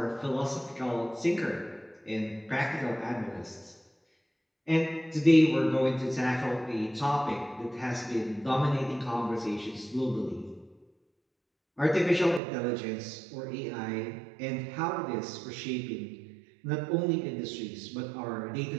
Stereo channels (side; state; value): left; drops out; at 12.4 s